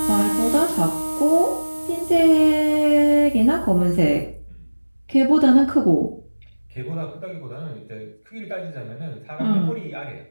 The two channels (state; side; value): inverted; both; correlation -1.00